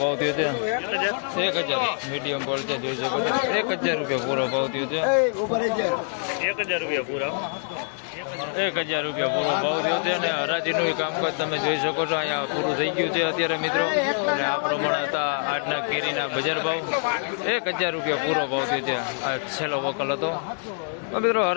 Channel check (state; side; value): silent; right; 62 dB below the other